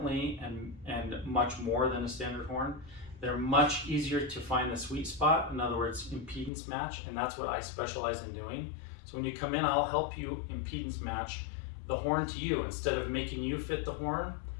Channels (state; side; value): drops out; right; at 6.5 s